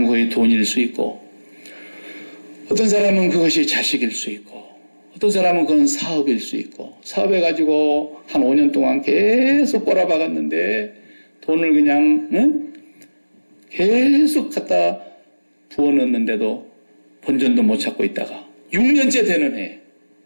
거의 돈일 수 있고, 어떤 사람은 그것이 자식일 수 있고, 어떤 사람은 그건 사업일 수 있고, 사업해가지고 한 5년 동안 계속 꼬라박았는데, 돈을 그냥, 계속 갖다 부어넣는데도 본전도 못 찾고 있다가, 6년째 되는 해.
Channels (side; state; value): both; inverted; correlation -1.00